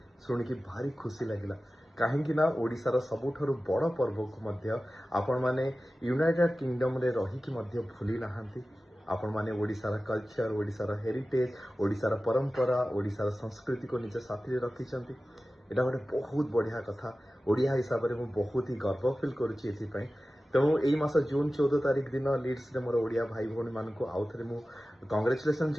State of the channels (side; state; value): both; normal; correlation 0.95